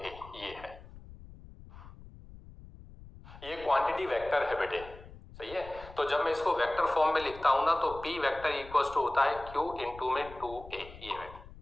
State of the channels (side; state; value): left; noise; rumble, 17 dB below the sound